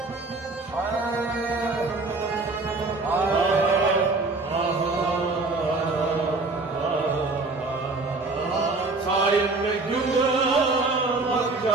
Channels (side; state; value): left; quieter; 3.5 dB